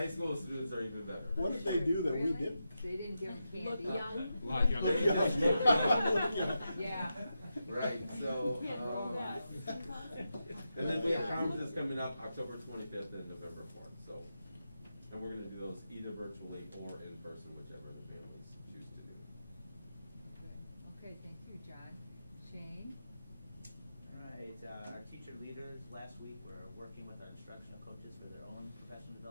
school students are even better. What did they do that we didn't? They didn't give them candy. Look young. A lot younger. Look young. Yeah. Right, so, and then we have conferences coming up October 25th and November 4th, so, and we're gonna do those either virtually or in person, whichever the families choose to do. Okay, thank you, John. Shane? Right, our teacher leaders last week were working with our instructional coaches for their own professional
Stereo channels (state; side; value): inverted; both; correlation -0.88